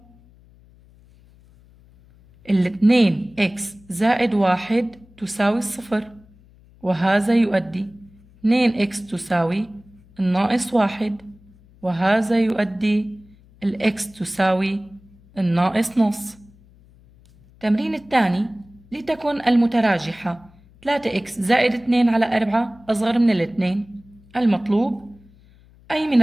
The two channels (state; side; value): noise; left; hum, 27 dB below the sound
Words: 2 اكس زائد 1 تساوي 0 وهذا يؤدي 2 اكس تساوي الناقص 1 وهذا يؤدي الاكس تساوي الناقص نص. التمرين الثاني لتكن المتراجحة 3 اكس زائد 2 على 4 أصغر من الاثنين. المطلوب أي من